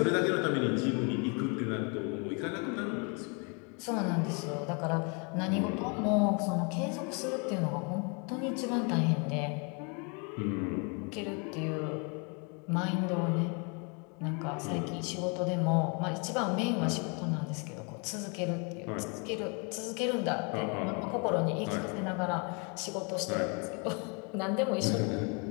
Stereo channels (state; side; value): quieter; right; 34.5 dB